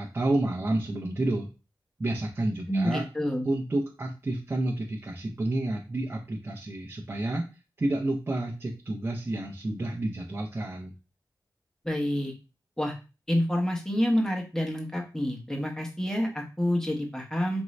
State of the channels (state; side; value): normal; both; correlation 0.94